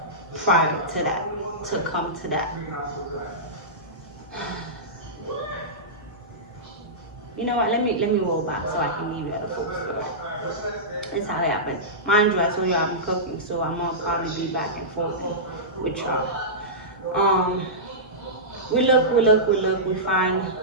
prior to that, to come to that. You know what, let me roll back so I can give you the full story. That's how it happened. Mind you, I told you I'm cooking, so I'm gonna probably be back and forth with y'all. We look, we find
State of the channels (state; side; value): normal; both; correlation -0.16